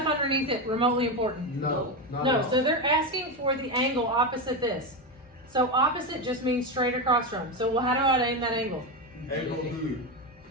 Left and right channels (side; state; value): both; normal; correlation 0.13